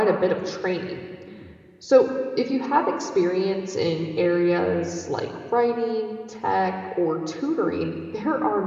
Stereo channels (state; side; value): identical; both; correlation 1.00